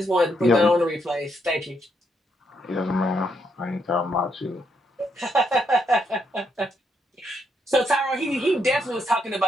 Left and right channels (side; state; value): both; normal; correlation 0.77